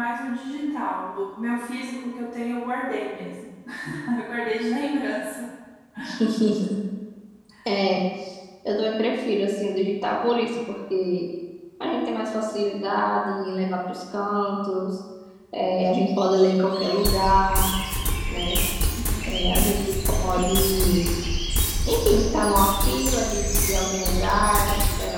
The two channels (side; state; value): both; identical; correlation 1.00